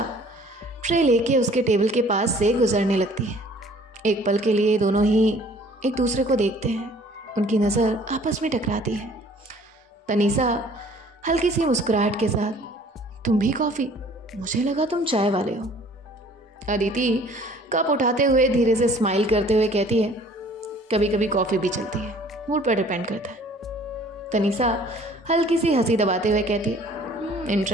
ट्रे लेके उसके टेबल के पास से गुजरने लगती है। एक पल के लिए दोनों ही एक दूसरे को देखते हैं, उनकी नज़र आपस में टकराती है। तनीषा हल्की सी मुस्कुराहट के साथ तुम भी कॉफ़ी? मुझे लगा तुम चाय वाले हो। अदिति कप उठाते हुए धीरे से स्माइल करते हुए कहती है कभी कभी कॉफ़ी भी चलती है, मूड पर डिपेंड करता है। तनीषा हल्की सी हंसी दबाते हुए कहती है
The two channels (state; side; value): normal; both; correlation 0.54